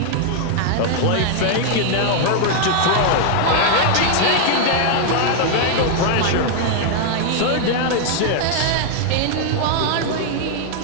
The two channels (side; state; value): both; different; correlation 0.00